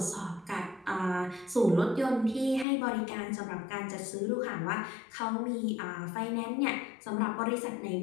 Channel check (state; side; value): drops out; right; at 2.7 s